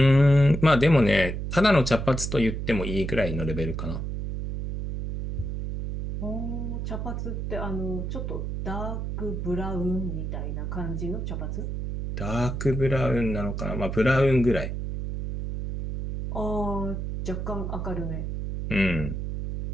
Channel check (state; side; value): noise; right; hum, 4 dB below the sound